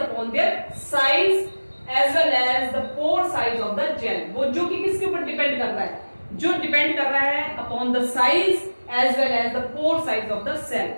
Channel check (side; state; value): both; inverted; correlation -1.00